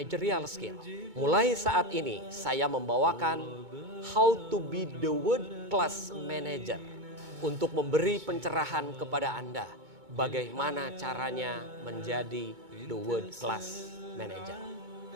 skill. Mulai saat ini saya membawakan How to be the World Class Manager untuk memberi pencerahan kepada Anda bagaimana caranya menjadi the World Class Manager.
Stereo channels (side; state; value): left; late; 2.2 ms